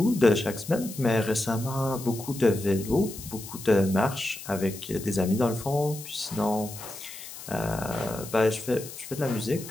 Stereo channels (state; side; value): noise; left; hiss, 13 dB below the sound